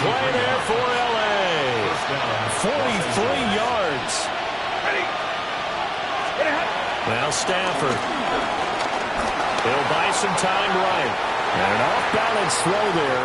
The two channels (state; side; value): identical; both; correlation 1.00